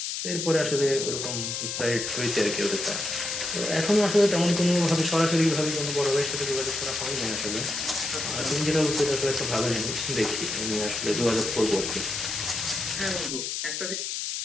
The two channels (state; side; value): noise; left; hiss, 3 dB below the sound